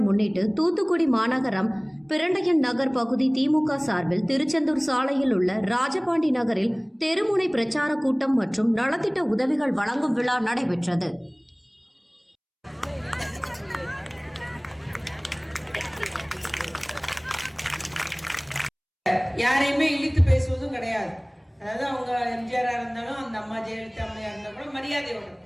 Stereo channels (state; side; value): identical; both; correlation 1.00